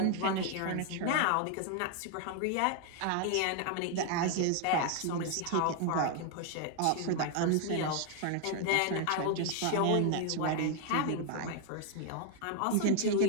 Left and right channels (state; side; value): different; both; correlation 0.00